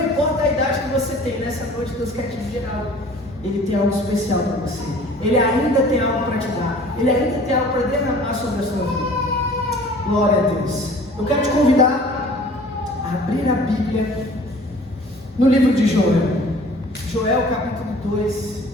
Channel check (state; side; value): normal; both; correlation 0.48